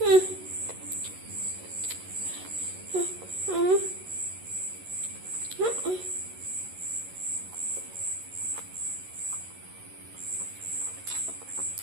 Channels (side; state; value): left; late; 11 ms